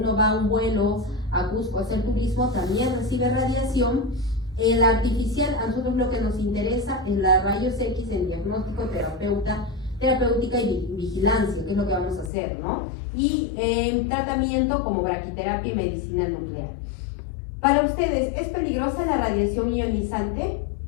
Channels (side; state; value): right; drops out; at 12.3 s